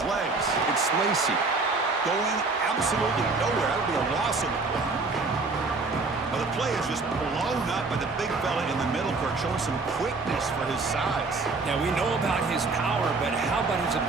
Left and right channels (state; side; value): quieter; left; 3.8 dB